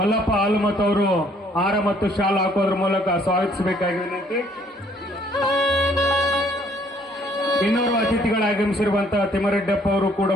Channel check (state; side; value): normal; both; correlation 0.63